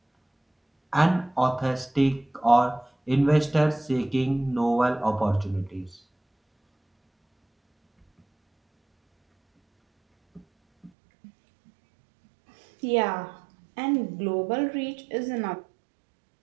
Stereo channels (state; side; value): drops out; left; at 10.9 s